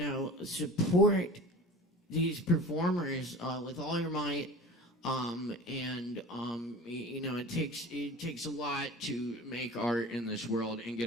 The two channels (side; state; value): both; normal; correlation 0.38